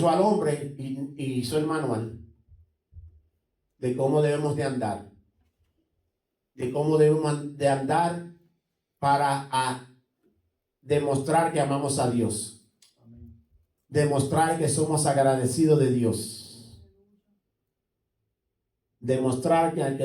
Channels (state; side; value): identical; both; correlation 1.00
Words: al hombre y hizo el manual de cómo debemos de andar. De cómo debemos de andar para demostrar que amamos a Dios. Amén. Demostrar que somos agradecidos de Dios. Demostrar que